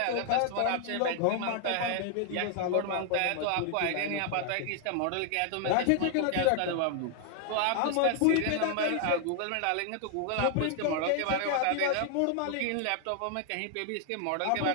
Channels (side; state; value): both; different; correlation 0.00